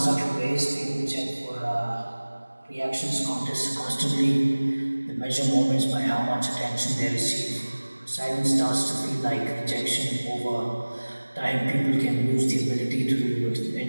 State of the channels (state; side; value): inverted; both; correlation -1.00